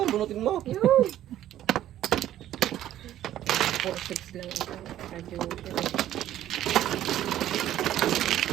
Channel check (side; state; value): left; quieter; 12.5 dB